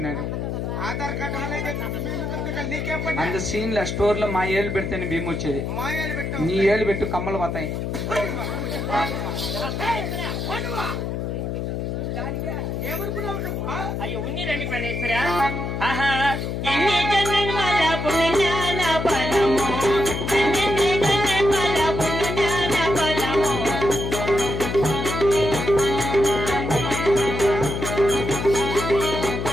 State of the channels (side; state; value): left; noise; hum, 3 dB below the sound